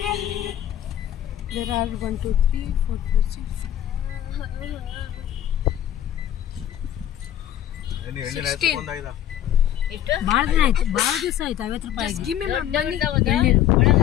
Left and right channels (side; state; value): right; quieter; 11.4 dB